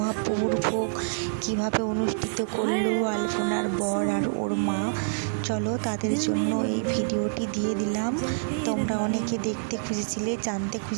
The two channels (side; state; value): left; silent; 60 dB below the other